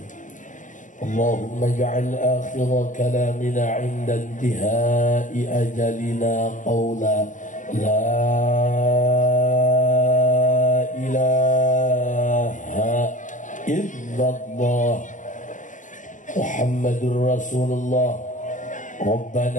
اللهم اجعل آخر كلامنا عند انتهاء أجلنا قولا لا إله إلا الله محمد رسول الله.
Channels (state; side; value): late; right; 0.37 ms